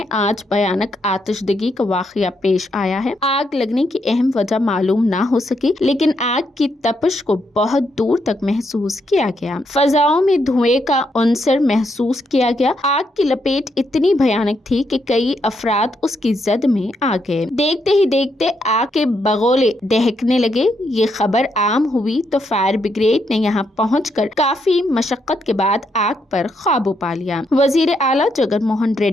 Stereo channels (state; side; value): normal; both; correlation 0.78